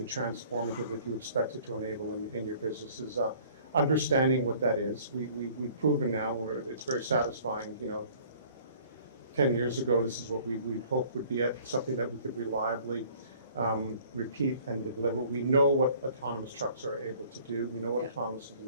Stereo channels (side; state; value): both; inverted; correlation -0.54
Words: transformative that you expect it to enable in your businesses. Understanding what that is, we've proven now. It's very satisfying. 10 years ago, this is what we'd hope would be something that we could reliably repeat and deliver. We know what autonomous trucks are able to do. We know what autonomous to